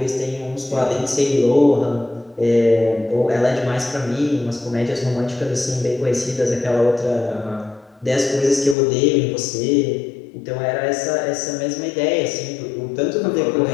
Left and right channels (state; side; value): drops out; right; at 8.8 s